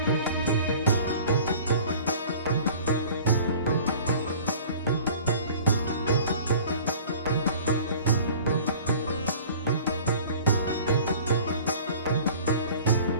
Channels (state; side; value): inverted; both; correlation -0.46